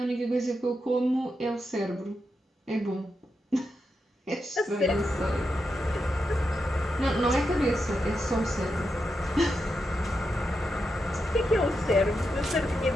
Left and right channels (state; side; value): normal; both; correlation 0.86